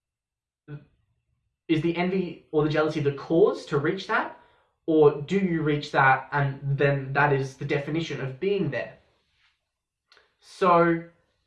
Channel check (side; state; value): both; identical; correlation 1.00